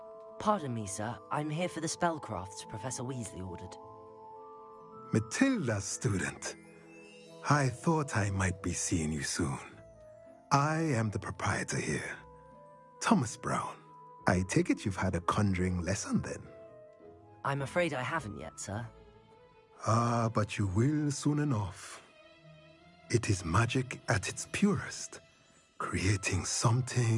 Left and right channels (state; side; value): identical; both; correlation 1.00